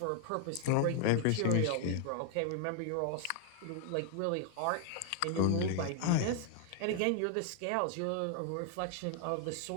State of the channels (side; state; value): both; different; correlation 0.00